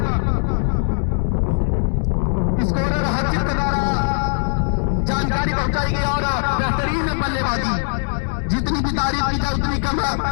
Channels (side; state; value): right; silent; 58 dB below the other